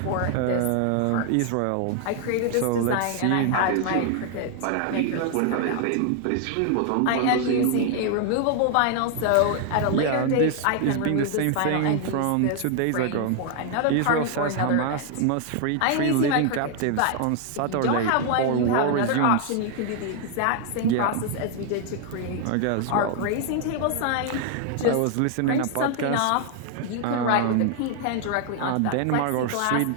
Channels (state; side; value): different; both; correlation 0.00